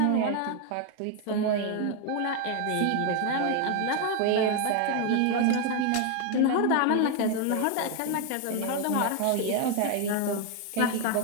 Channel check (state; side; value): different; both; correlation 0.01